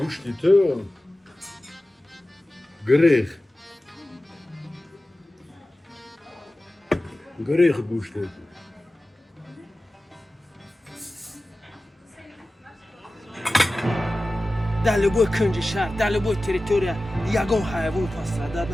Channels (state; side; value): normal; both; correlation 0.96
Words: تو گریخ گوشتی در لبوی کنج شهر در لبوی تریتوریا یگان حیوان پس ردد